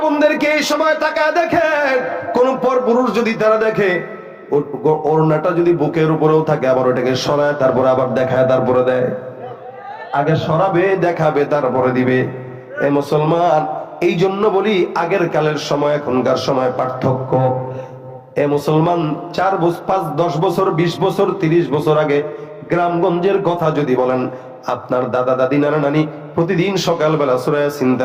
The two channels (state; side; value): identical; both; correlation 1.00